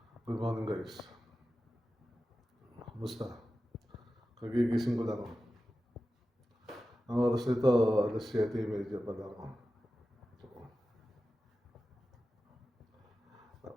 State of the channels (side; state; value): both; normal; correlation 0.93